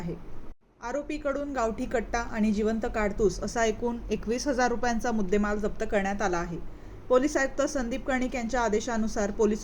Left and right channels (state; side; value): identical; both; correlation 1.00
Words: आरोपीकडून गावठी कट्टा आणि जिवंत काडतूस असा एकूण 21,000 रुपयांचा मुद्देमाल जप्त करण्यात आला आहे। पोलीस आयुक्त संदीप कर्णिक यांच्या आदेशानुसार